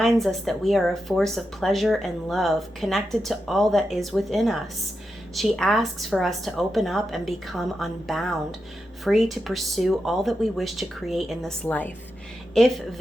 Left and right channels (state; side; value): normal; both; correlation 0.88